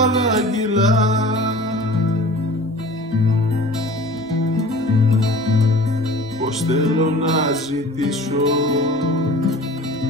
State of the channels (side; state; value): both; normal; correlation 0.42